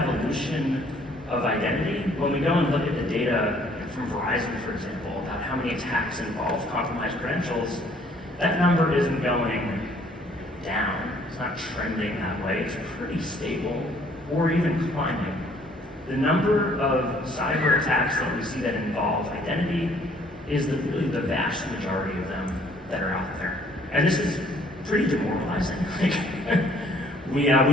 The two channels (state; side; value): normal; both; correlation 0.61